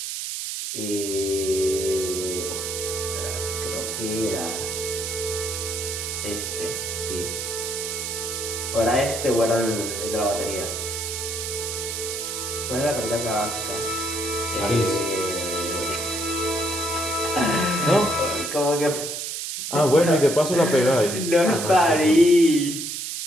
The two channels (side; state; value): right; noise; hiss, 4 dB below the sound